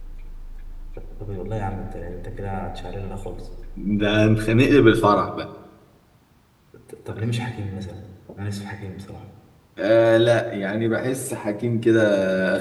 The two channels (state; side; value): identical; both; correlation 1.00